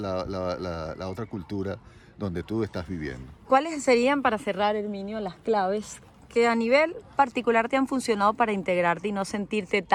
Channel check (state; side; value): identical; both; correlation 1.00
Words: otra cultura donde tú estás viviendo. ¿Cuáles serían, para cerrar, Herminio, las claves que a nivel particular te han funcionado para integrarte y no sentirte